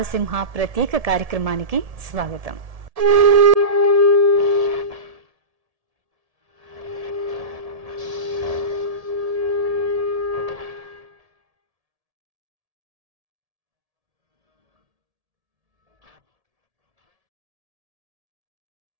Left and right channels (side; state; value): left; late; 1.7 ms